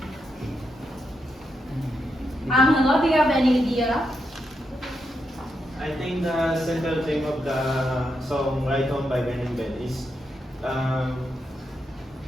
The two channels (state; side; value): normal; both; correlation 0.83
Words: Angelo, do you have any idea? I think the central theme of the song Ride Home by Ben and Ben is